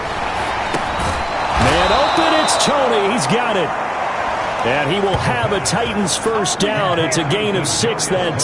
Man open, it's Tony. He's got it. And he will have a Titans first down. It's a gain of 6 that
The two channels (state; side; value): identical; both; correlation 1.00